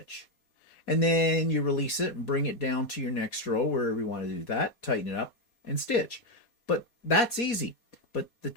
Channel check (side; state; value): right; late; 4.2 ms